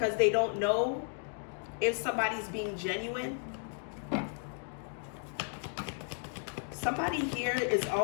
they don't know if somebody's being genuine. Somebody here is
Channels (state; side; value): silent; right; 55 dB below the other